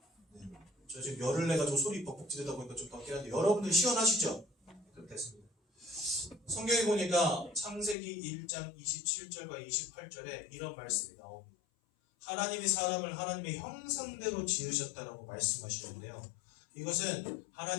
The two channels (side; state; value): right; drops out; at 8.0 s